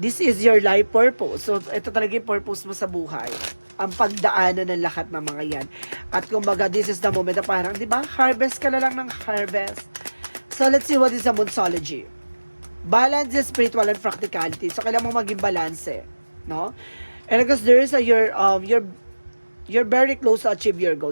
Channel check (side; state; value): both; inverted; correlation -1.00